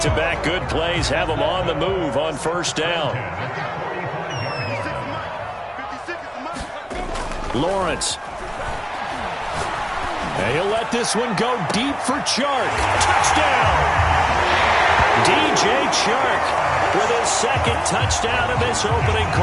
good plays have them on the move on first down. Lawrence. And he'll let this one go deep for Chark. Touchdown! DJ Chark with his second touchdown in this opening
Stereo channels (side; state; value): both; identical; correlation 1.00